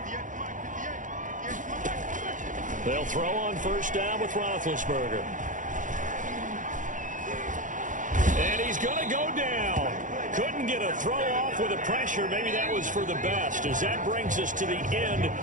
They'll throw on 1st down with Roethlisberger. And he's going to go down. Couldn't get a throw off with the pressure. Maybe that was for the best, as that brings us to the end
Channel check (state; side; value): late; left; 0.37 ms